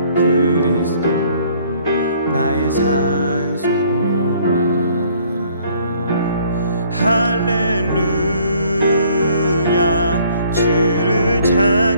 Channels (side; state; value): both; inverted; correlation -0.60